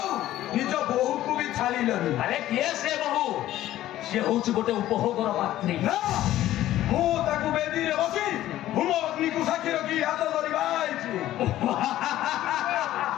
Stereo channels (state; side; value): quieter; right; 13.9 dB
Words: निज बहु को भी छाड़िलनी अरे किए से बहु से होच गोटे उपभोगर पात्री ना मु ताकू बेदी रे बसी हुम अग्नि को साक्षी रखी हाथ धरिबा आइछि